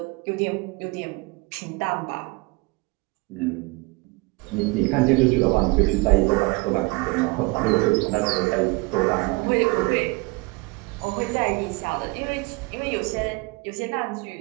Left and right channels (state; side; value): quieter; left; 25.9 dB